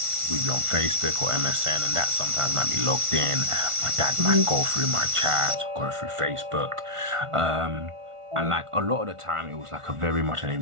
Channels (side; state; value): left; late; 1.5 ms